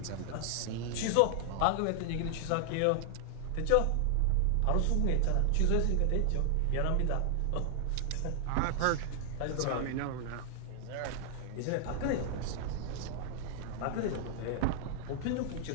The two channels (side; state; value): both; different; correlation 0.00